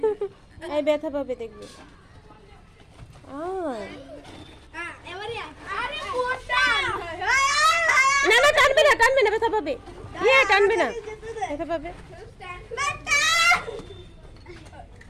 এই ব্যথা পাবে দেখবে। এবারে আরে মোটা। না না, টানবে না টানবে না, ব্যথা পাবে। ইয়ে টানবে না, ব্যথা পাবে।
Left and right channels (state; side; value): identical; both; correlation 1.00